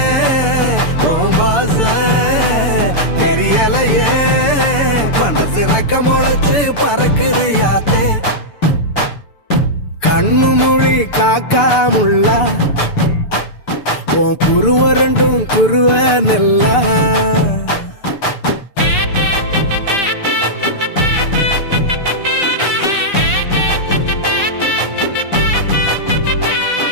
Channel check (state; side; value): late; right; 6.8 ms